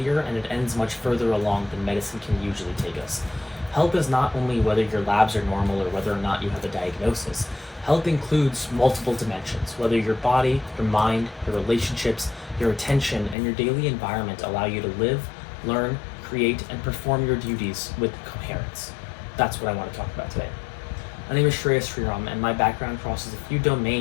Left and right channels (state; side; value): drops out; right; at 13.4 s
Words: and it ends much further along than medicine can usually take us. Health is not only whether your labs are normal or whether or not you have a diagnosis. Health includes multiple dimensions, whether your body, your mind, your relationships, your attention, and your daily environment allow you to live, learn, create, and perform your duties with coherence. That's what I want to talk about today. My name is Shreyas Sriram, and my background crosses a few